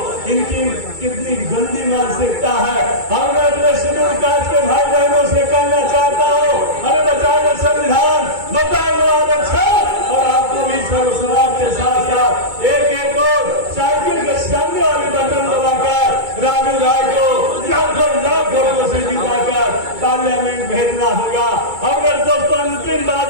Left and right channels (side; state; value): left; late; 2.2 ms